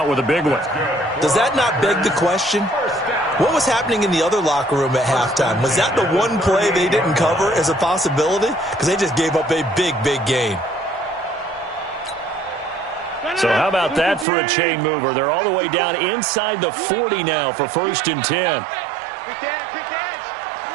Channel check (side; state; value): left; drops out; at 14.2 s